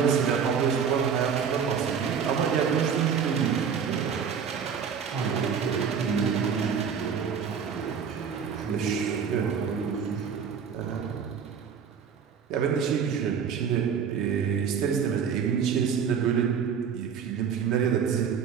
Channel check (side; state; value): left; quieter; 7.0 dB